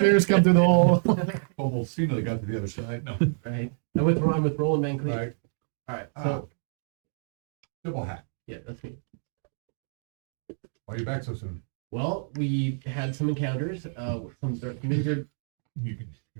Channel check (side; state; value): left; silent; digital silence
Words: come through the hole. Kobold seemingly got to the other side. No. right. I'm with Roland Van Cleef. Right. All right. Ah. Double hat. Yeah, that's me. Why are you back so soon? Well, we had some encounters. Some wizard. You can.